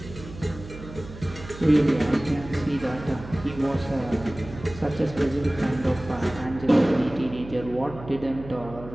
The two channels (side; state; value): right; noise; hum, 14 dB below the sound